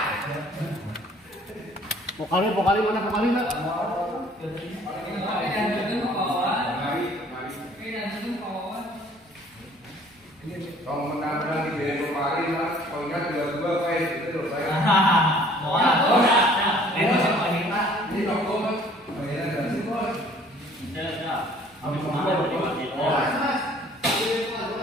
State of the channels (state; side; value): normal; both; correlation 0.55